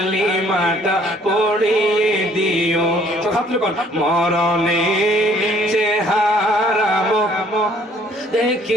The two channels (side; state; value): both; normal; correlation 0.60